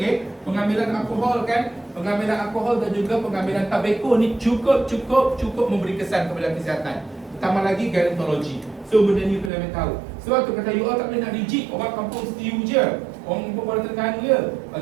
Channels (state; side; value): drops out; left; at 9.5 s